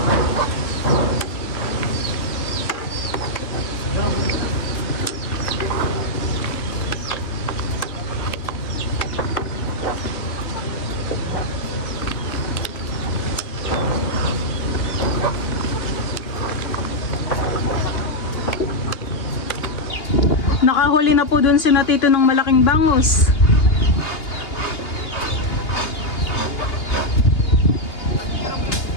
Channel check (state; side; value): late; right; 2.8 ms